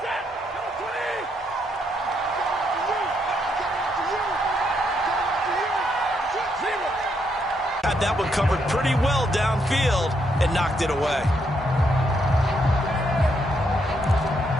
Had that one covered pretty well downfield and knocked it away.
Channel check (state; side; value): normal; both; correlation 0.76